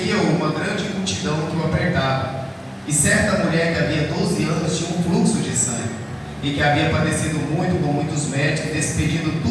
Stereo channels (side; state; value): both; identical; correlation 1.00